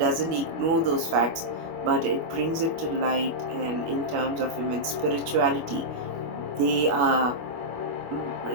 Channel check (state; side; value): late; left; 25 ms